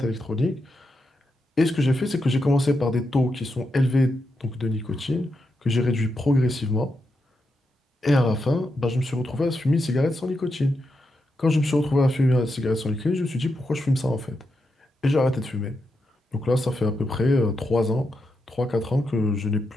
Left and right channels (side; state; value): both; normal; correlation 0.85